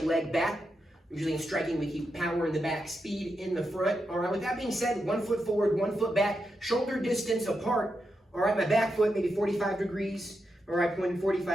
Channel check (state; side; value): normal; both; correlation 0.86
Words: leg back. Usually in striking, we keep power in the back, speed in the front. All right, with that being said, 1 foot forward, 1 foot back, shoulder distance apart. All right, my back foot maybe 45 degrees. All right, pointing